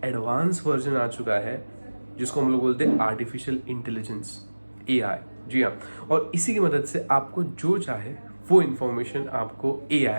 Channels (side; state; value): both; inverted; correlation -1.00